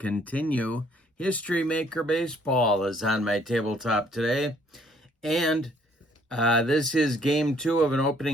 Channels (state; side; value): normal; both; correlation 0.63